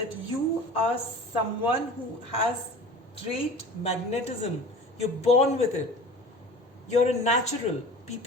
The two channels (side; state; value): both; normal; correlation 0.39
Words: you are someone who has great magnetism. You're born with it. You're a natural.